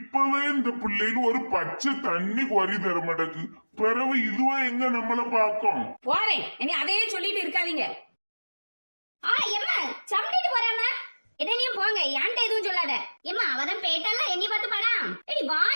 இந்த பிள்ளைகள் ஒரு பச்சை தண்ணி குறை தர மாட்டேக்கு. பிறகு இதுவா எங்க நம்மள பாக்கும். போறேன், இனி அதையே சொல்லிட்டு இருக்காதீங்க. எம்மா சம்டிட்டு போறாம என்னையும் போங்க, ஏன்ட்ட எதுவும் சொல்லாத. எம்மா அவதான் பேட்டால என்னை பார்த்து படா. ஏடி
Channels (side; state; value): both; inverted; correlation -1.00